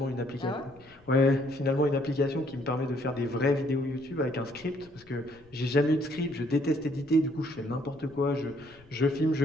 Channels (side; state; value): left; noise; rumble, 27 dB below the sound